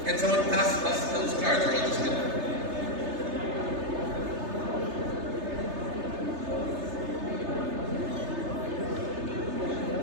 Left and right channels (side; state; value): left; late; 3.3 ms